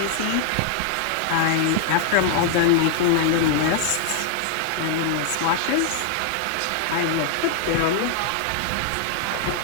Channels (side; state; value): both; different; correlation 0.00